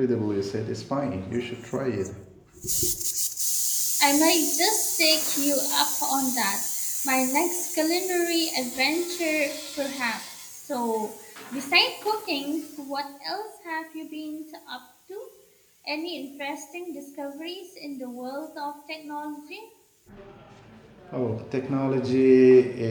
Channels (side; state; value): both; identical; correlation 1.00